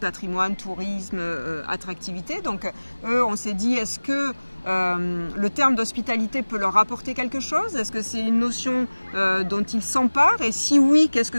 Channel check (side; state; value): both; inverted; correlation -1.00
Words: tourisme, attractivité. Donc eux, on s'est dit, est-ce que le terme d'hospitalité peut leur apporter quelque chose? Est-ce que c'est une notion dont ils s'emparent? Et si oui, qu'est-ce